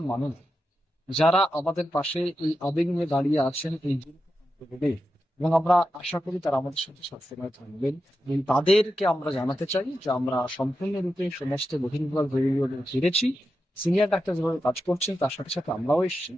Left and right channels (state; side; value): normal; both; correlation 0.89